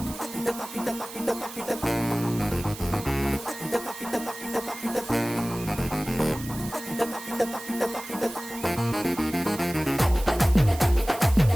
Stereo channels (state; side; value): noise; right; hiss, 13 dB below the sound